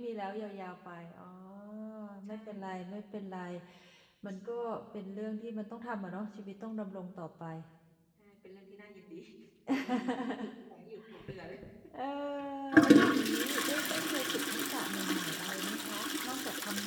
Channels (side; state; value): both; identical; correlation 1.00